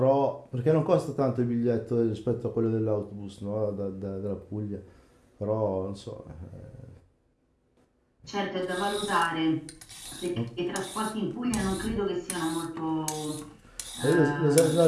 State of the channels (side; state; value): both; identical; correlation 1.00